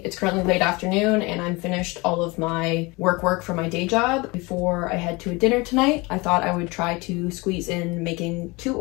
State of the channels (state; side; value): quieter; right; 24.9 dB